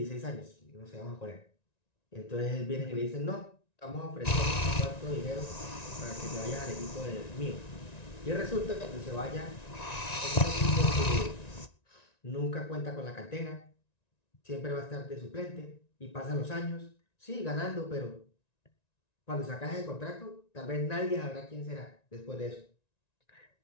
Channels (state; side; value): late; right; 1.9 ms